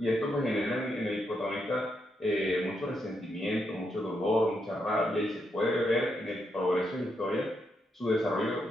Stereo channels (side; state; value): both; normal; correlation 0.80